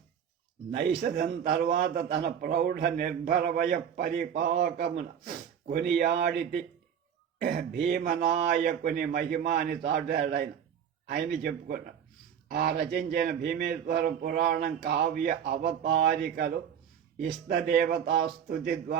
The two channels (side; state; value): left; quieter; 8.4 dB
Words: నైషధం తర్వాత తన ప్రౌఢ నిర్భరవయ పరిపాకమున కొనియాడితి భీమనాయకుని మహిమ అని చాటాడు ఆయన చెప్పుకున్నాడు. ఆ రచించిన భీమేశ్వర పురాణం కావ్య అవతారికలు ఇష్టదేవతా స్తుతి